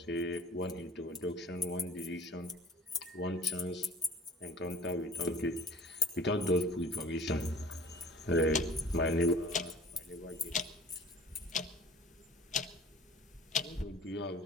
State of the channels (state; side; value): normal; both; correlation 0.47